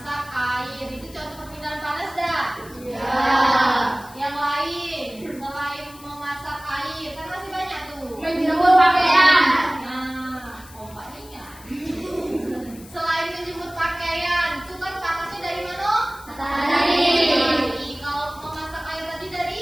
air. Itu contoh perpindahan panas dah? Iya. Yang lain, selain memasak air, kan masih banyak tuh. Menjemur pakaian. Nah, Pak ingat. Selain menjemur pakaian, itu kan panasnya dari mana? Matahari. Kalau memasak air tadi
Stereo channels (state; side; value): noise; left; hiss, 21 dB below the sound